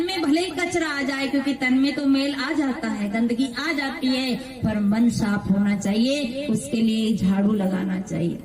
में भले ही कचरा आ जाए, क्योंकि तन में तो मेल आ जाता है, गंदगी आ जाती है, पर मन साफ होना चाहिए, उसके लिए झाड़ू लगाना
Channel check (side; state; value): both; identical; correlation 1.00